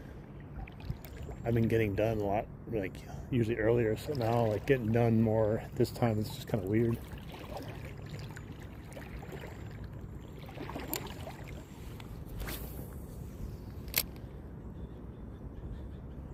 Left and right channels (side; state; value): both; identical; correlation 1.00